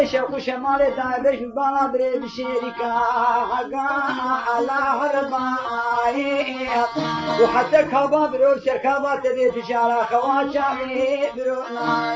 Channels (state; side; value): identical; both; correlation 1.00